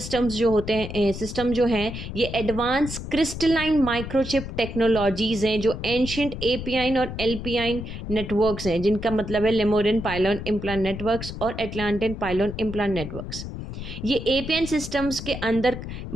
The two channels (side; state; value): left; noise; rumble, 8 dB below the sound